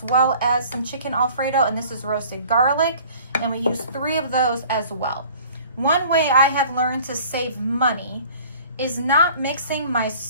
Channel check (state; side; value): inverted; both; correlation -0.49